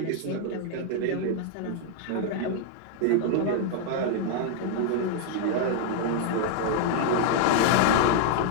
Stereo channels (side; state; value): both; different; correlation 0.00